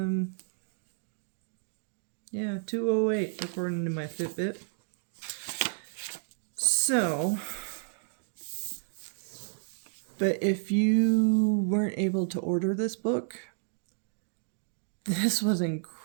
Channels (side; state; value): left; silent; 57 dB below the other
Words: Yeah, 2:08 according to my Fitbit. So, but if you weren't able to order this book, this was